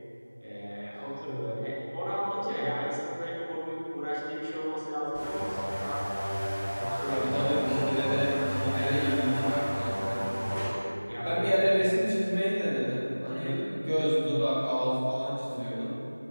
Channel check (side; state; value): both; inverted; correlation -1.00